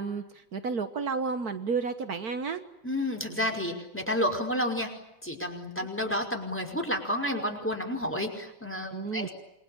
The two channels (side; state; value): both; normal; correlation 0.03